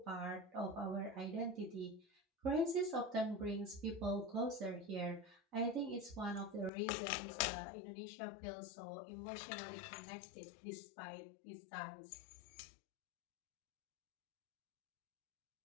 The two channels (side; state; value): right; drops out; at 6.7 s